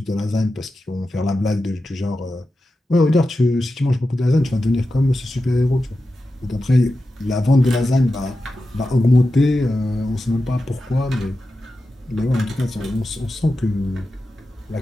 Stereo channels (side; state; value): both; normal; correlation 0.91